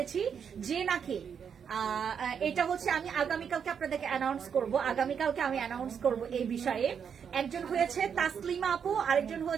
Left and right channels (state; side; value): quieter; left; 7.3 dB